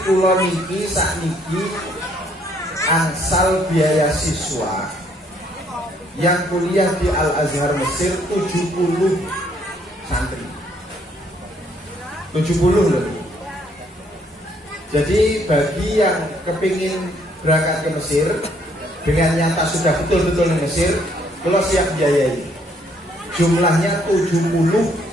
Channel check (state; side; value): normal; both; correlation 0.67